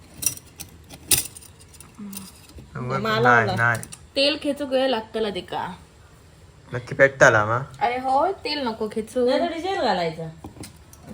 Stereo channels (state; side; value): identical; both; correlation 1.00